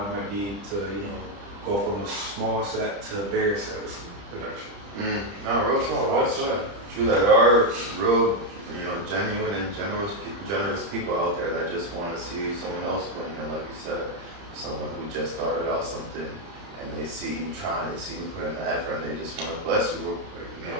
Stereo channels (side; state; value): left; late; 30 ms